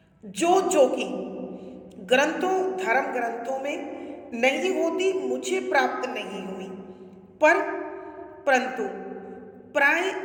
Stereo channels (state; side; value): identical; both; correlation 1.00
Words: जो कि ग्रंथों, धर्म ग्रंथों में नहीं होती, मुझे प्राप्त नहीं हुई, परंतु प्राय